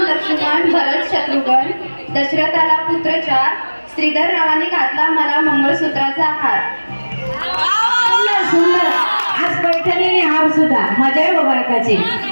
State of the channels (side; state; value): both; inverted; correlation -1.00